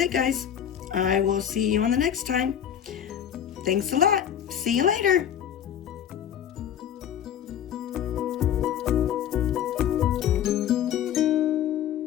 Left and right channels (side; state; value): right; quieter; 9.6 dB